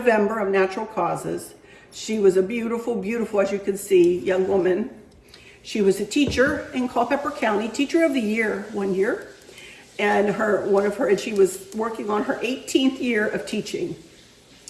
of natural causes. She was a beautiful, beautiful, as you can see, young woman. She was a teacher in Culpeper County, Teacher of the Year one year, and she was working on her 18th year of teaching.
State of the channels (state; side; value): identical; both; correlation 1.00